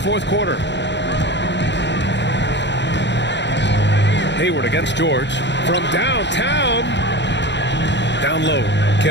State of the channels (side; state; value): right; late; 0.52 ms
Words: quarter. Hayward against George. From downtown. Down low.